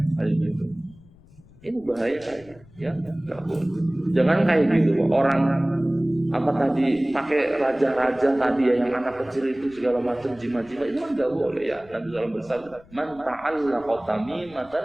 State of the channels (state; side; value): noise; left; rumble, 25 dB below the sound